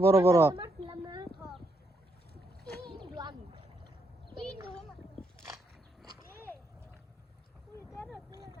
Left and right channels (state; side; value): normal; both; correlation 0.77